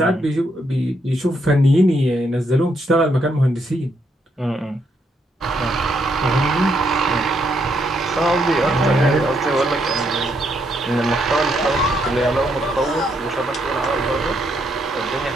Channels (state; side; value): normal; both; correlation 0.76